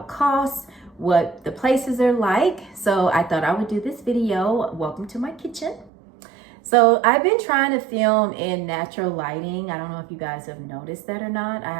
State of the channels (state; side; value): drops out; left; at 5.9 s